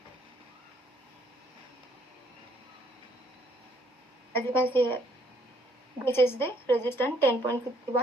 As you can see, this is the resistance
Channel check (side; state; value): both; normal; correlation 0.66